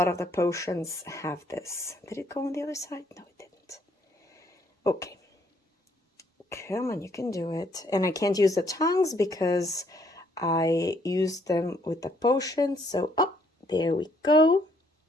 of the potions have this. Did it go on the other side? No, it didn't. Okay. Come on, you can do it. And I can't use the tongues because I used them with the potion. So, oh, there we go.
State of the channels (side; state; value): both; normal; correlation 0.67